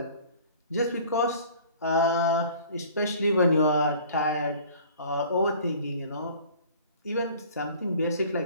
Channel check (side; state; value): both; inverted; correlation -0.49